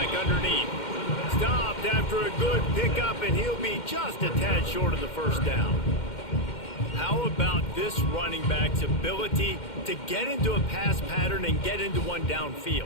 underneath. Stopped after a good pickup, and he'll be just a tad short of the first down. How about this running back's ability to get into a pass pattern and get into one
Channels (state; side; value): late; right; 2.1 ms